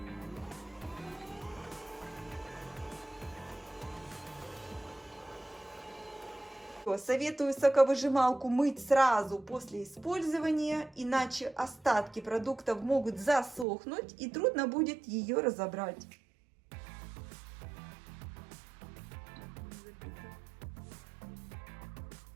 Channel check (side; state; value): left; drops out; at 13.7 s